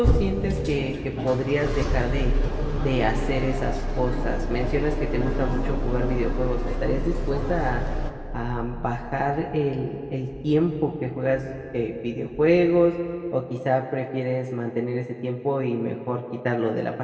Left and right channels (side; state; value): both; identical; correlation 1.00